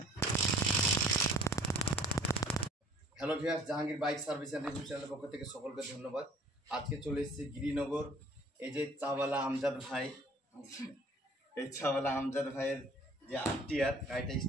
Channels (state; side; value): normal; both; correlation 0.54